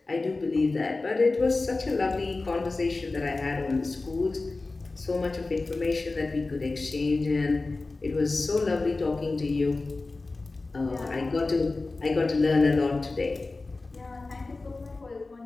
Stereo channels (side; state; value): right; quieter; 3.4 dB